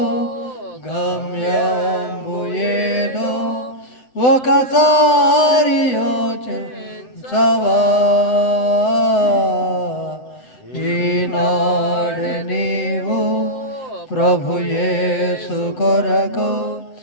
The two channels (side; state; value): right; late; 8.0 ms